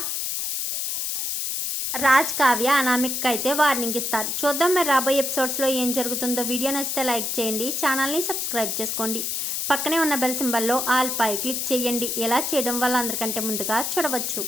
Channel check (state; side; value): noise; left; hiss, 1 dB below the sound